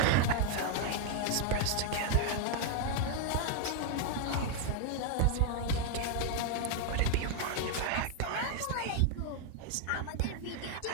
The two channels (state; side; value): different; both; correlation 0.00